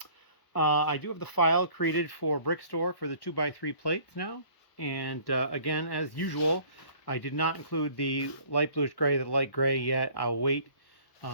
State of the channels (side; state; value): right; late; 1.3 ms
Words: I do have the file created for Brick Store for the 2x3 plates now. And again, as usual, I did not include the light bluish gray, the light gray yet. I'll wait,